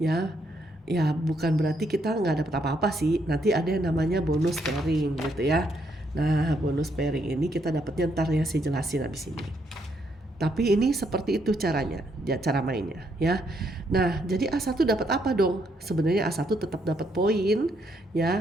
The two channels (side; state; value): both; normal; correlation 0.74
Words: ya. Ya bukan berarti kita nggak dapat apa-apa sih. Nanti ada yang namanya bonus pairing gitu ya. Nah, bonus pairing ini kita dapatnya ntar ya, saya jelasin habis ini. Tapi ini seperti itu caranya, ya, cara mainnya ya. Nah, jadi A1 dapat apa dong? Sebenarnya A1 tetap dapat poin